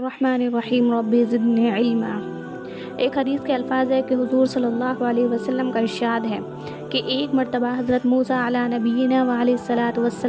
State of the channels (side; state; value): both; identical; correlation 1.00